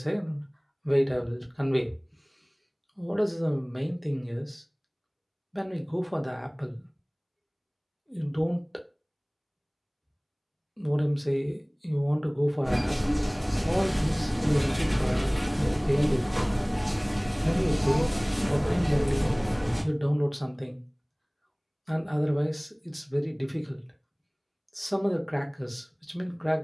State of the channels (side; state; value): both; identical; correlation 1.00